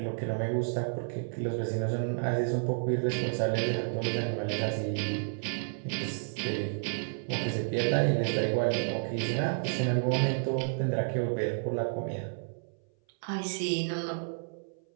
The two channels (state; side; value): silent; left; 57 dB below the other